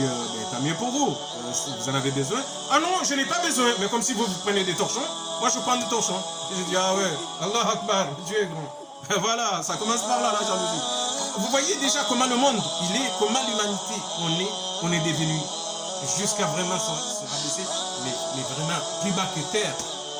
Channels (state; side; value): identical; both; correlation 1.00